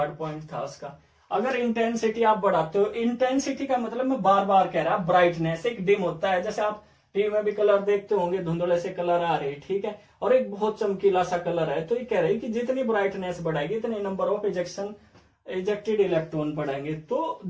पॉइंट था उसका। अगर इंटेंसिटी आप बढ़ाते हो, इंटेंसिटी का मतलब मैं बार बार कह रहा, ब्राइटनेस एक डिम होता है, जैसे आप टीवी में भी कलर देखते होंगे, धुंधले से कलर आ रहे, ठीक है, और एक बहुत चमकीला सा कलर है। तो ये कह रही कि जितनी ब्राइटनेस बढ़ाएगी इतने नंबर ऑफ इजेक्टेड इलेक्ट्रॉन बढ़ेंगे। तो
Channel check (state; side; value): identical; both; correlation 1.00